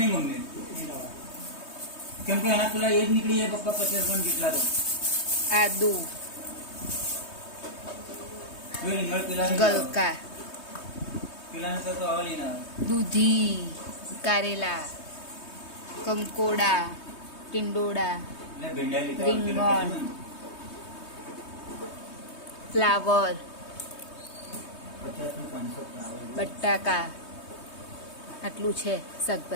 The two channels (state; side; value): late; right; 3.2 ms